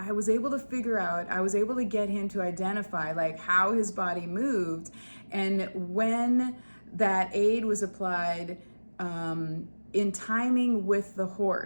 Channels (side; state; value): both; inverted; correlation -1.00